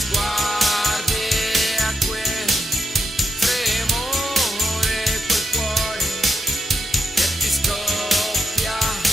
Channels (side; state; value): both; normal; correlation 0.83